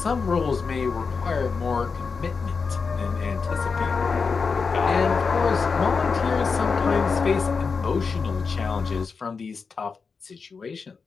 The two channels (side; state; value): right; quieter; 5.1 dB